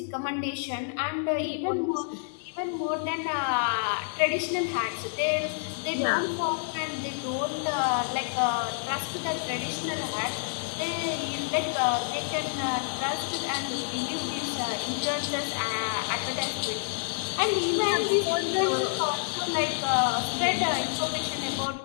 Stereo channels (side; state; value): right; silent; digital silence